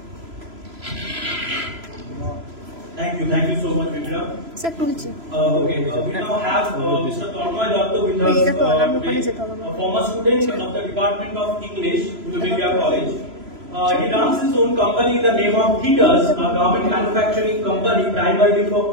Thank you so much, Vidya. Sir তুলছি। Okay, we now have Mr. Tornoy Datta with us, Mera to alarm upone jete hobe a former student of the Department of English, Uluberia College. He runs his own company in the name of Theaters, a garment manufacturing company primarily for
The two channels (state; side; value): late; left; 3.0 ms